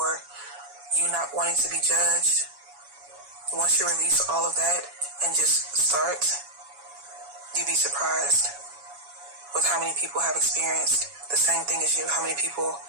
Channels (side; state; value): left; late; 7.1 ms